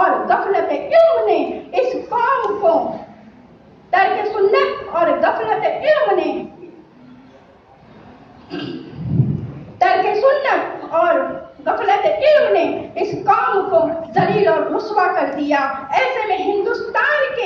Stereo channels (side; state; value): both; identical; correlation 1.00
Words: गफलत इल्म ने इस कौम को तर्क सुन्नत और गफलत इल्म ने इस कौम को जलील और रुस्वा कर दिया। ऐसे में हिंदुस्तान